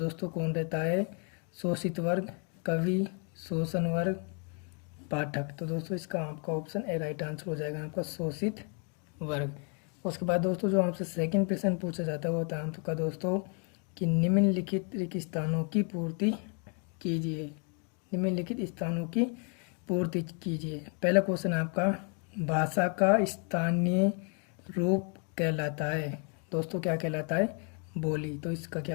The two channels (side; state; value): right; quieter; 38.6 dB